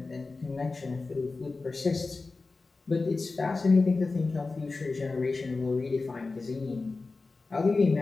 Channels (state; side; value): quieter; right; 3.8 dB